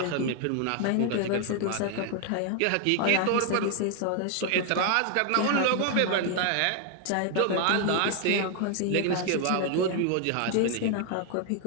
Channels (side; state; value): both; different; correlation 0.00